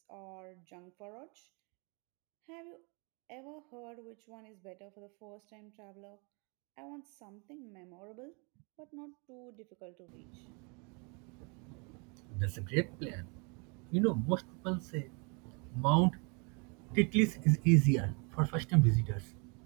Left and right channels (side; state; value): left; quieter; 33.3 dB